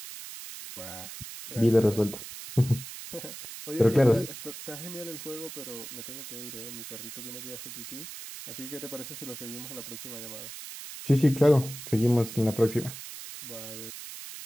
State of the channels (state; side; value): noise; right; hiss, 11 dB below the sound